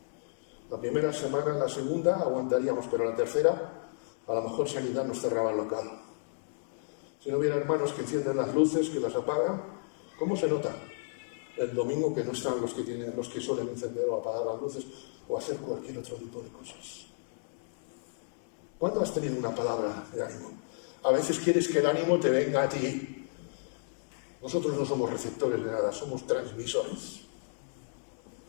la primera semana, la segunda, aguantaríamos, pero la tercera, a lo mejor Sanidad nos cerraba el local. Si no hubiera hermanos que encienden las luces, que las apagan, ¿cómo se nota? El domingo que no están los que suelen encender o apagar las luces o hacer cualquier otro tipo de cosas. ¿Cuándo has tenido una palabra de ánimo? A veces quieres que el ánimo te venga a ti. Nosotros no somos receptores de nada, somos transmisores.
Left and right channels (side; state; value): right; silent; digital silence